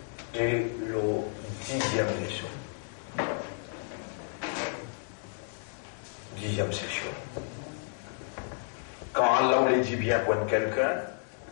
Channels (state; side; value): silent; right; 57 dB below the other